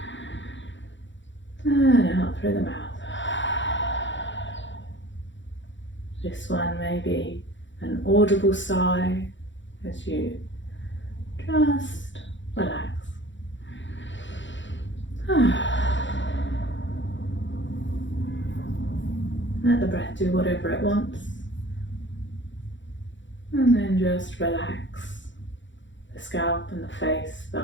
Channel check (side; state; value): right; late; 0.54 ms